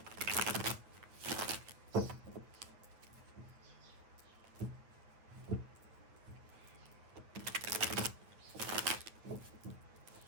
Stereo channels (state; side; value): late; left; 8.9 ms